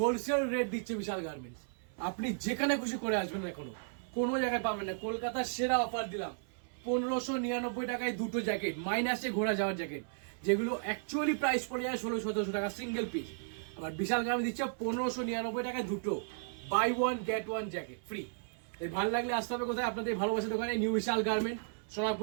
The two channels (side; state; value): left; silent; 55 dB below the other